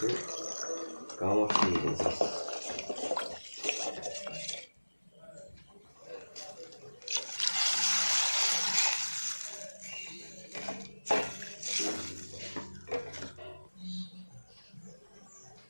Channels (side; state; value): both; inverted; correlation -1.00